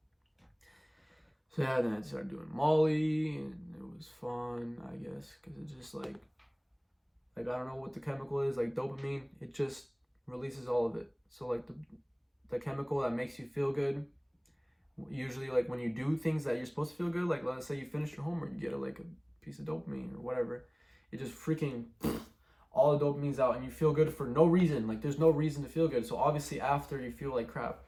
So yeah, then I started doing Molly, and it was fun, I guess, because it's just like I don't know what the chemical is, like dopamine, it just releases all of it. So, like, the chemical that makes you feel good Usually, like when you do things that you're supposed to feel good, like let's say you finish your homework, you get like a piece of dopamine or whatever. It just freaking all the dopamine's out and you feel good for no reason. Like there's no reason to feel good. So obviously after you feel like crap.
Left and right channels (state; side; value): identical; both; correlation 1.00